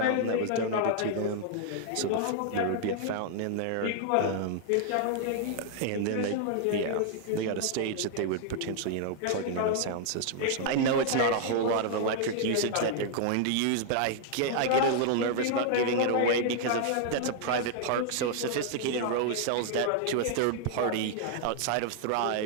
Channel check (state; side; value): different; both; correlation 0.00